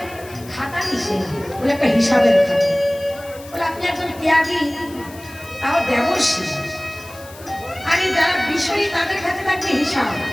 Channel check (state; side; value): noise; left; hiss, 20 dB below the sound